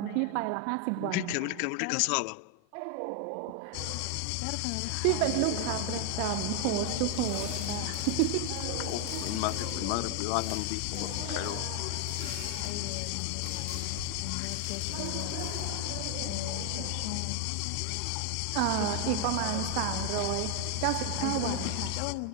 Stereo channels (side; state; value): both; different; correlation 0.01